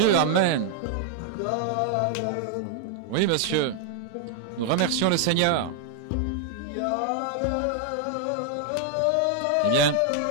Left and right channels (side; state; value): both; different; correlation 0.00